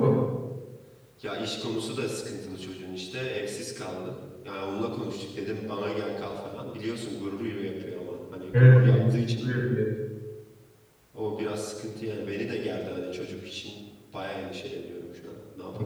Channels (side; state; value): both; identical; correlation 1.00